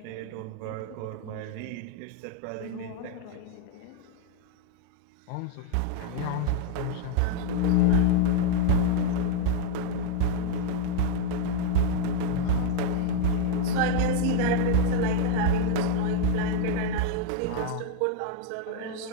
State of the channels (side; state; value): both; different; correlation 0.01